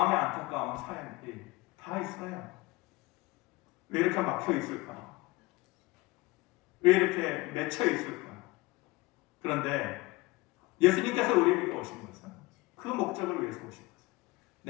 안타까운 사연들이 다 있어요. 왜 이렇게 막혀 있을까? 왜 이렇게 맺혀 있을까? 그런데 예수님께서 우리에게 오신 것은 그 목적을 위해서 오신 것은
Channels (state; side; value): quieter; right; 21.5 dB